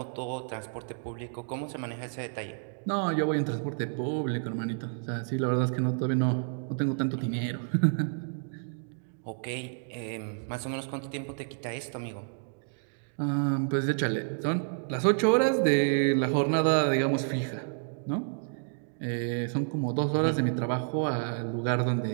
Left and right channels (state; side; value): silent; left; digital silence